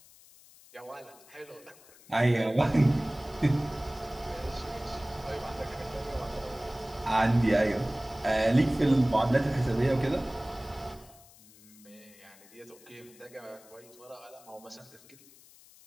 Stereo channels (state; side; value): noise; left; hiss, 24 dB below the sound